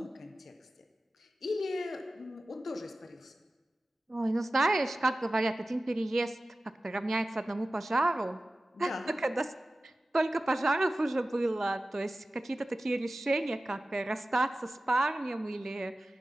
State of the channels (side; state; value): both; normal; correlation 0.96